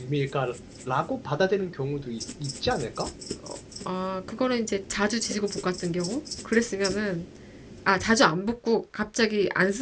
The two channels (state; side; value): identical; both; correlation 1.00